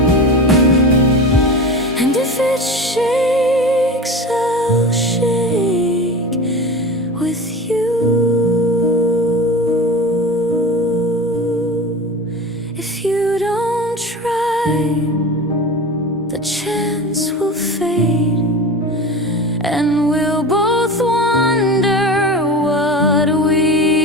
And if it shakes, I'll shake with you. If you don't try, the chance will fade, and we'll both wonder what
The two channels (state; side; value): normal; both; correlation 0.30